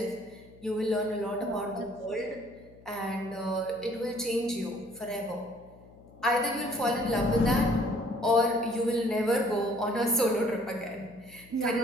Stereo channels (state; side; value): noise; left; hum, 23 dB below the sound